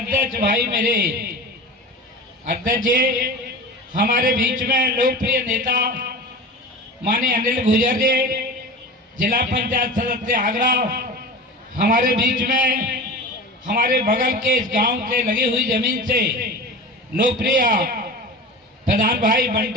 भाई मेरे अध्यक्ष जी, हमारे बीच में लोकप्रिय नेता माननीय अनिल गुर्जर जी, जिला पंचायत सदस्य आगरा, हमारे बीच में हमारे बगल के इस गांव से लगी हुई जमीन से लोकप्रिय प्रधान भाई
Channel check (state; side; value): normal; both; correlation 0.32